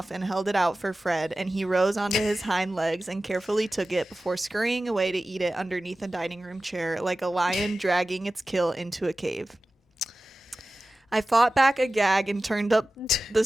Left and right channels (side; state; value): both; normal; correlation 0.96